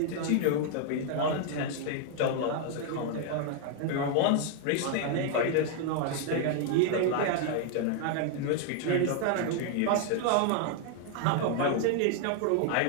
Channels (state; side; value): different; both; correlation 0.00